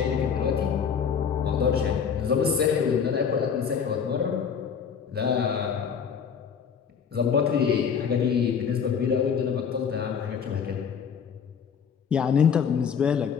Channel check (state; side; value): quieter; right; 7.0 dB